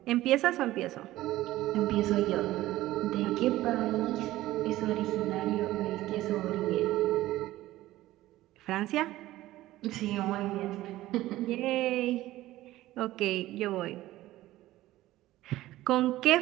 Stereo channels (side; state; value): left; quieter; 16.0 dB